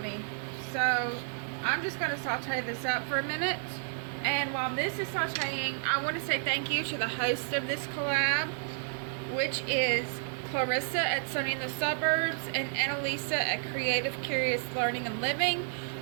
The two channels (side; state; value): left; silent; digital silence